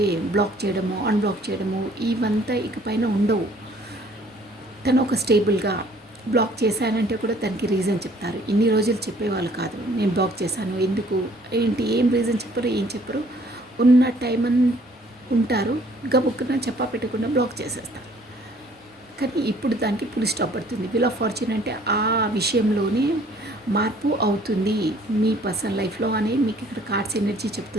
బ్లాక్ చేయడము, అన్బ్లాక్ చేయడము ఇవంతా ఇకపైన ఉండవు. తను ఒక స్టేబుల్గా బ్లాక్ చేశానంటే కూడా తనకి రీజన్ చెప్తారు. ఇన్ని రోజులు చెప్పేవాళ్ళు కాదు, నేను బ్లాక్ చేశాను ఎందుకు ఏంటి, ఏం రీజన్ చెప్పరు, ఏం చెప్పరు. ఉన్న టైం ఉంటారు, గబుక్కున చెప్పా పెట్టకుండా బ్లాక్ చేసేస్తారు. కానీ ఇప్పుడు దానికి పులి స్టాప్ పడుతుంది. విల్ ఆఫ్ ఫార్చ్యూన్ అంటే ఆ విషయంలోనే మార్పు అవుతుంది మీ పర్సనల్ లైఫ్లో అని మీకు ఇక్కడ కార్డ్స్ ఎనర్జీ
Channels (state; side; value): normal; both; correlation 0.58